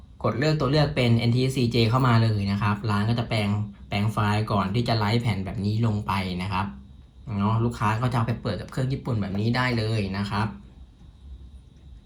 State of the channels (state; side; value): identical; both; correlation 1.00